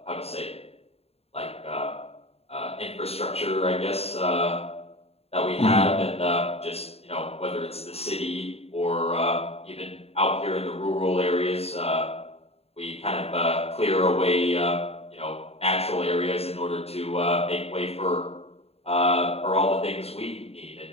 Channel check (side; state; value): right; late; 0.29 ms